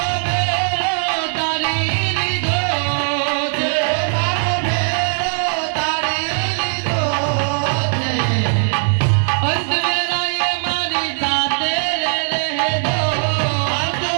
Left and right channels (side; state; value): left; silent; digital silence